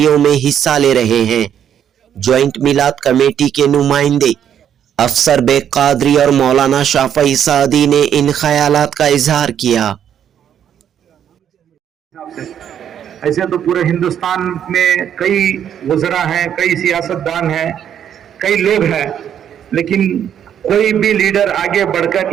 में हिस्सा ले रहे हैं। ज्वाइंट मिलाद कमेटी के नुमाइंदे अफसर बेग कादरी और मौलाना शाफई सादी ने इन ख्यालात का इजहार किया। ऐसे तो पूरे हिंदुस्तान में कई वज़रा हैं, कई सियासतदान हैं, कई लोग हैं, लेकिन कोई भी लीडर आगे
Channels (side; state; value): left; quieter; 9.3 dB